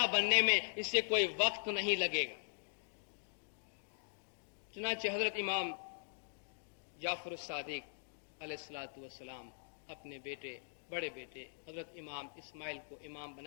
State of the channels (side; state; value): right; silent; digital silence